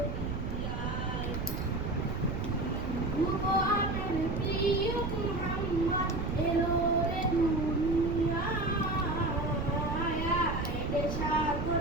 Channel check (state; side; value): noise; right; rumble, 4 dB below the sound